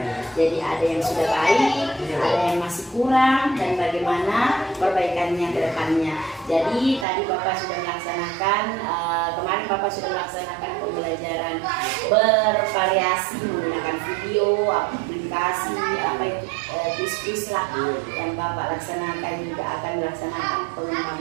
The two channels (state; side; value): drops out; left; at 7.1 s